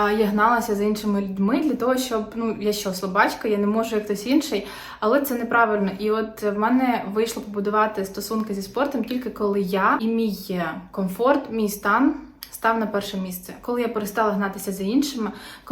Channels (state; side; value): identical; both; correlation 1.00